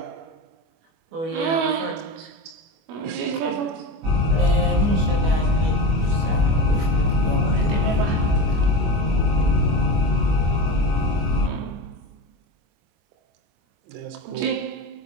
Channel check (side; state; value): left; late; 25 ms